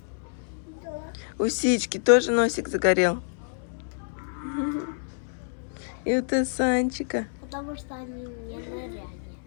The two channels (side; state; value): right; silent; digital silence